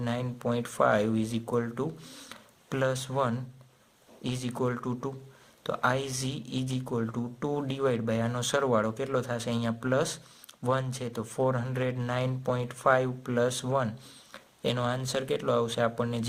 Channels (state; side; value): identical; both; correlation 1.00